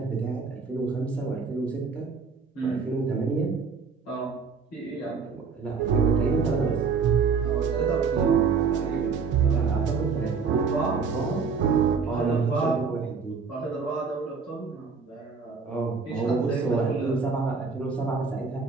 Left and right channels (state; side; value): quieter; left; 5.3 dB